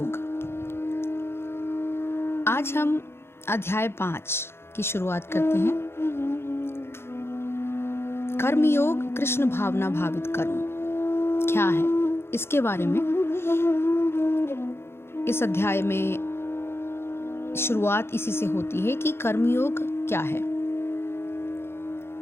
आज हम अध्याय 5 की शुरुआत करते हैं। कर्मयोग कृष्ण भावना भावित कर्म क्या है, इसके बारे में इस अध्याय में शुरुआत इसी से होती है कि कर्मयोग क्या है।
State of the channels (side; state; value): right; late; 0.12 ms